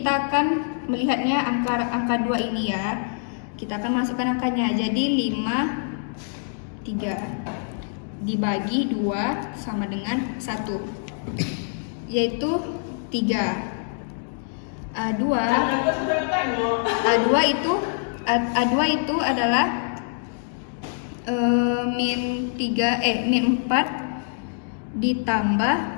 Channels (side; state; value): right; silent; digital silence